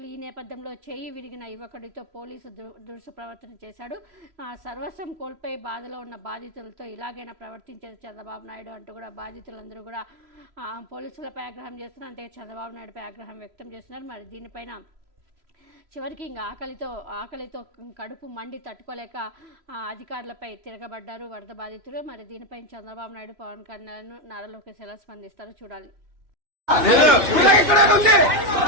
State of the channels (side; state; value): left; late; 2.7 ms